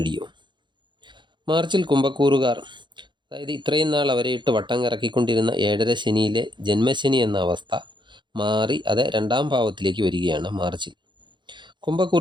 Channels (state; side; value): late; left; 0.23 ms